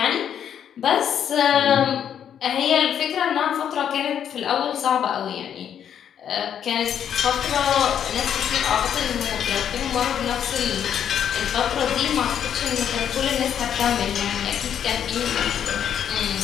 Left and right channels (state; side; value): quieter; right; 9.0 dB